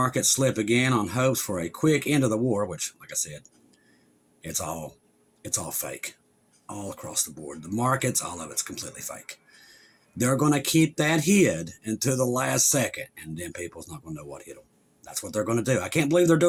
slip again on hopes for a quick end of the war, which, like I said, it's all fake. All across the board. The markets, all of it's completely fake. They're going to keep that hid until the last second, and then people's not going to know what hit them. That's what they're going to do. I can't believe they're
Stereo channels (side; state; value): both; identical; correlation 1.00